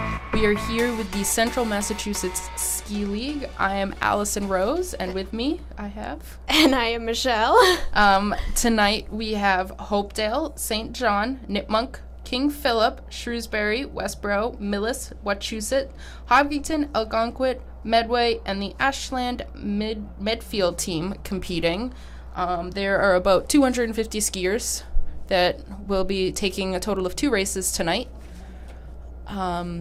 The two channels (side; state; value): both; identical; correlation 1.00